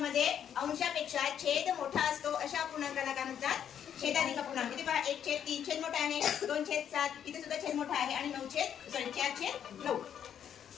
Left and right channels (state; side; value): quieter; right; 9.1 dB